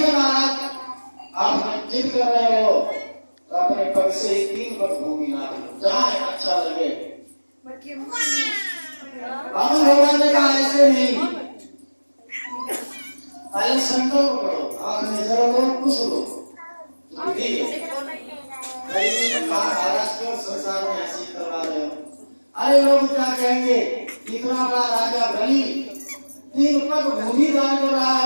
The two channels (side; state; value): both; inverted; correlation -1.00